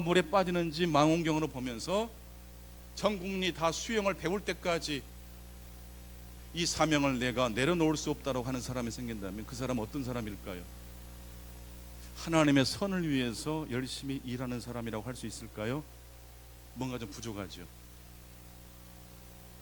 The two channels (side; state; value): both; identical; correlation 1.00